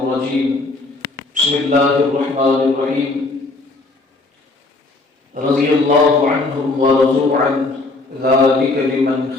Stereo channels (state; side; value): quieter; right; 3.3 dB